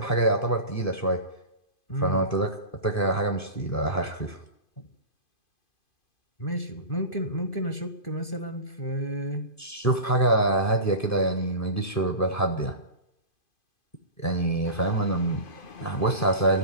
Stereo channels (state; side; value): late; right; 2.5 ms